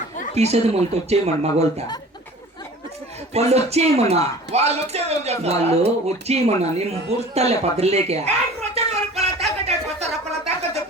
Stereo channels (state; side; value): normal; both; correlation 0.43